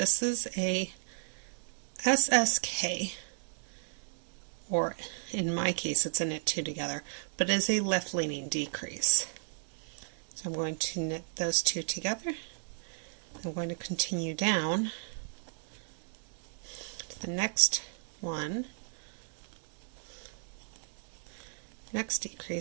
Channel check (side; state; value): left; silent; digital silence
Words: is a SSK, or in my case it's a knit 2 together, but it is a left leaning decrease. So I'm going to knit those 2 together. I'm going to continue down to the next one, next